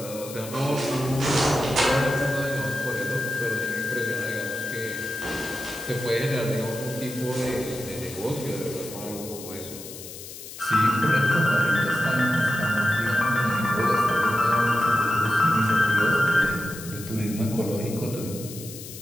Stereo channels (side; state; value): left; noise; hiss, 13 dB below the sound